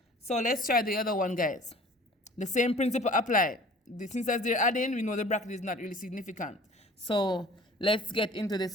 So let's try the other one, guys. The same principle applied. Since as they're adding, we know the bracket is not really significant. So let's get into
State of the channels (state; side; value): normal; both; correlation 0.47